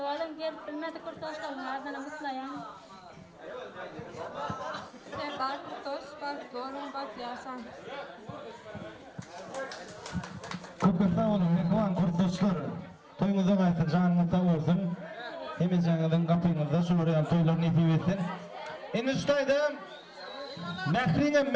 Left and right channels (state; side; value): identical; both; correlation 1.00